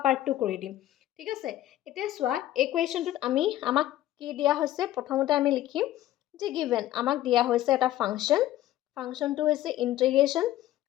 পাৰ্টটো কৰি দিম। ঠিক আছে, এতিয়া চোৱা এই কুৱেশ্যনটোত আমাক কি দিয়া হৈছে, প্ৰথমতে আমি লিখিম যে গিভেন আমাক দিয়া হৈছে এটা ফাংচনটো হৈছে integration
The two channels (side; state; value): right; quieter; 13.9 dB